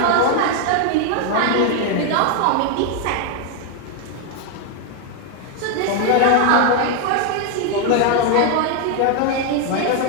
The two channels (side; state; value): both; different; correlation 0.01